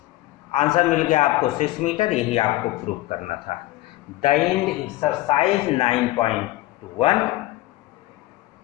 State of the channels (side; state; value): right; quieter; 17.6 dB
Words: Answer मिल गया आपको 6 मीटर, यही आपको प्रूव करना था। The end exercise 9.1।